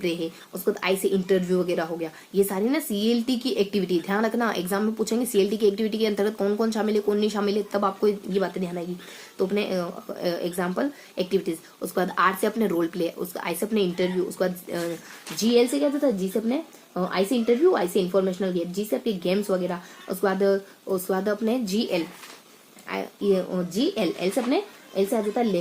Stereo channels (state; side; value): identical; both; correlation 1.00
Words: है, उसके बाद आई से इंटरव्यू वगैरह हो गया। ये सारी ना सीएलटी की एक्टिविटी, ध्यान रखना एग्जाम में पूछेंगे सीएलटी की एक्टिविटी के अंतर्गत कौन कौन शामिल है कौन नहीं शामिल है, तब आपको ये बातें ध्यान आएगी। तो अपने एग्जाम्पल एक्टिविटीज, उसके बाद आर से अपने रोल प्ले, उसका आई से अपने इंटरव्यू, उसके बाद जीएल से क्या होता है, जी से अपने आई से इंटरव्यू, आई से इंफॉर्मेशनल गेम, जी से अपने गेम्स वगैरह, उसके बाद अपने जीएल एल से अपने एल से आ जाता है